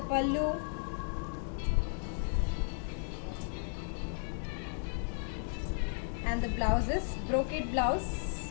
And the blouse is brocade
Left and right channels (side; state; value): right; silent; 55 dB below the other